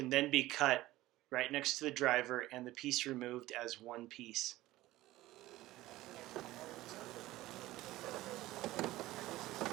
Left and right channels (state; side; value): quieter; left; 16.9 dB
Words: then be cut right next to the driver and the piece removed as one piece.